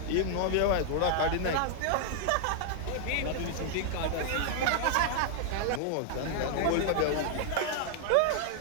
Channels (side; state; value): both; different; correlation -0.01